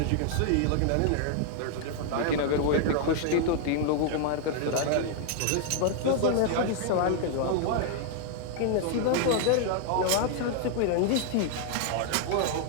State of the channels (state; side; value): different; both; correlation 0.00